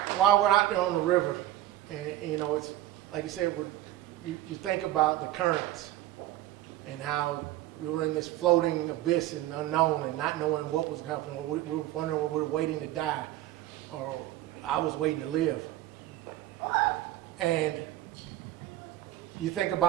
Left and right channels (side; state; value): left; quieter; 14.5 dB